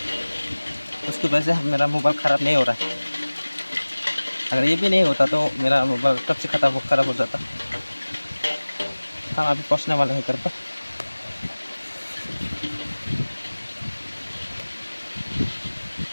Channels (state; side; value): inverted; both; correlation -1.00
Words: उसकी वजह से मेरा मोबाइल ख़राब नहीं हो रहा है। अगर ये भी नहीं होता तो मेरा मोबाइल कब से ख़राब हो जाता। हम अभी पहुंचने वाले हैं घर पर।